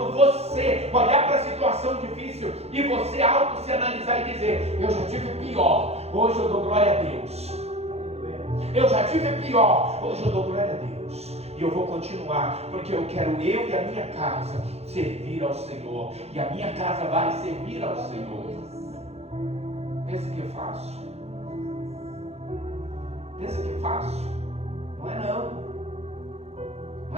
você olhar para a situação difícil e você se analisar e dizer, eu já tive pior, hoje eu dou glória a Deus. Eu já tive pior, hoje eu dou glória a Deus. E eu vou continuar, porque eu quero eu e a minha casa servir ao Senhor. E a minha casa vai servir ao Senhor. Pensa que é fácil? Pensa que é fácil? Não é não.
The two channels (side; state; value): left; late; 0.30 ms